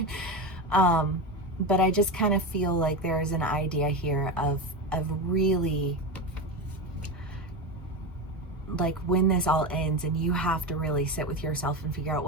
But I just kind of feel like there is an idea here of really, like, when this all ends and you have to really sit with yourself and figure out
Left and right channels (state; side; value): normal; both; correlation 0.20